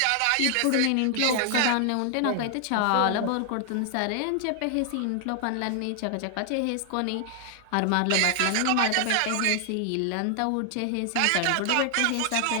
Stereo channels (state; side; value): different; both; correlation 0.00